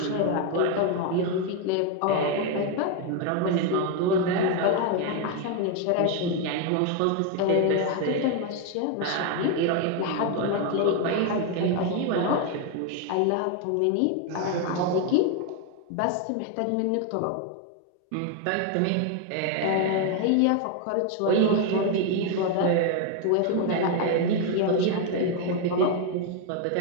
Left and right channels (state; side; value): different; both; correlation 0.01